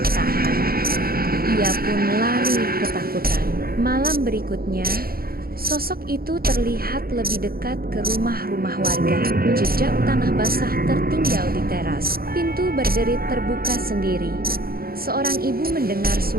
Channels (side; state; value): left; late; 0.44 ms